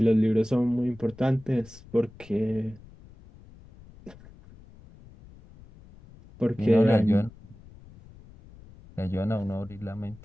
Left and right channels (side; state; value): left; noise; rumble, 22 dB below the sound